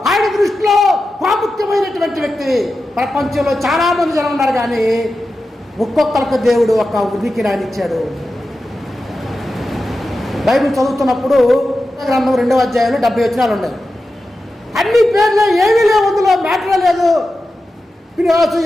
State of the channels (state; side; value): normal; both; correlation 0.92